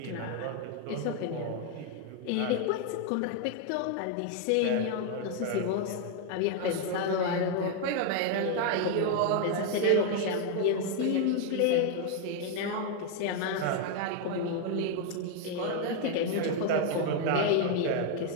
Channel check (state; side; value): different; both; correlation 0.00